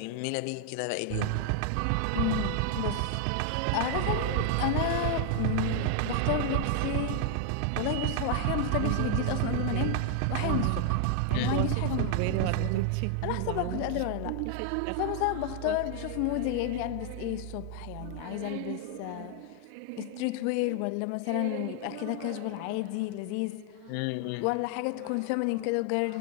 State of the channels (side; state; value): both; different; correlation 0.00